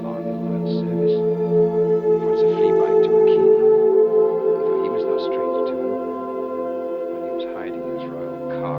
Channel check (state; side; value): identical; both; correlation 1.00